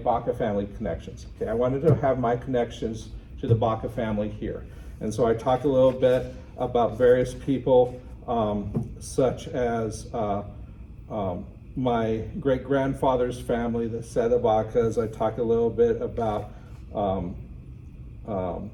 family connections. Okay, I wanted to have my connections to the Baca family here, and so I talked a little bit about various people, such as my great-grandfather's family, the Seda Bacas. I talked a little bit about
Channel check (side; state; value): both; identical; correlation 1.00